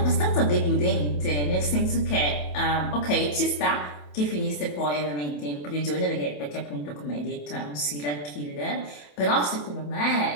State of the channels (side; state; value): right; late; 27 ms